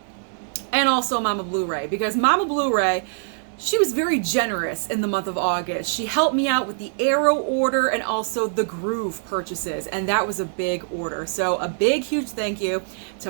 And also Mama Blu-ray, because Mama Blu-ray, she was very generous in the month of August. She helped me out with the Arrow order and also the Gruv purchases, and that was a big order. So a big, huge thank you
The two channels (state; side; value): silent; left; digital silence